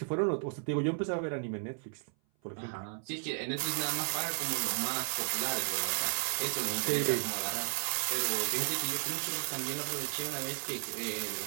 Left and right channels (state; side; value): silent; left; 55 dB below the other